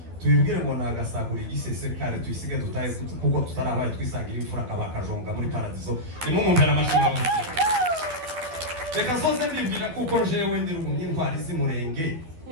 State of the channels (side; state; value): left; late; 12 ms